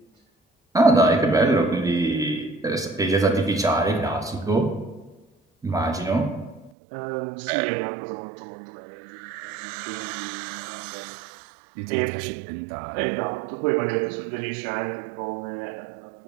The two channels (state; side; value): drops out; left; at 6.7 s